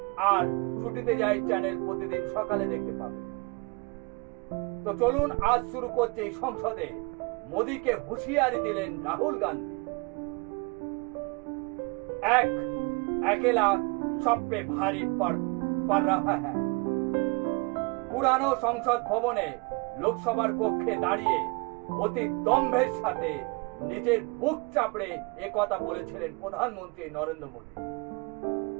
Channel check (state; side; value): quieter; left; 29.6 dB